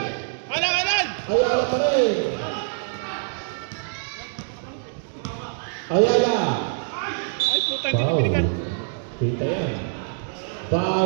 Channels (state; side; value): silent; left; digital silence